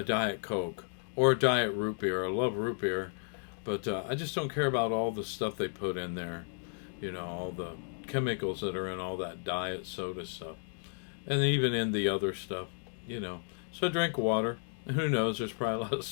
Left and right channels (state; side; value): silent; right; digital silence